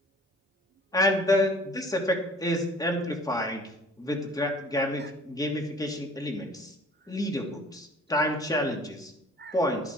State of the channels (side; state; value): both; normal; correlation 0.50